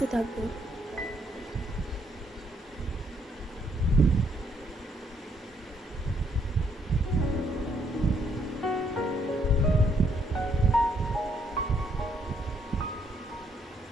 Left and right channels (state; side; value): normal; both; correlation 0.71